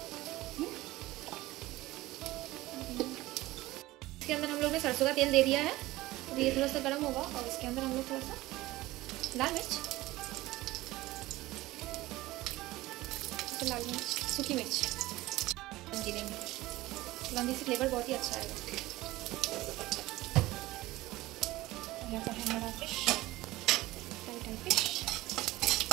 इसके अंदर हम लोग ने सरसों का तेल दे दिया है। तो ये थोड़ा सा गर्म होगा, और इसके अंदर हम लोग थोड़ा सा लाल मिर्च, फिर लाल मिर्च, सूखी मिर्च देंगे। लौंगी से फ्लेवर बहुत ही अच्छा आएगा। यहाँ पर है हमारा फिश, टाइट फिश।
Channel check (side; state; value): left; quieter; 18.1 dB